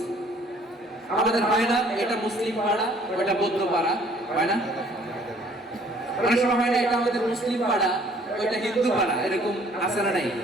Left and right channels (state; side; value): normal; both; correlation 0.58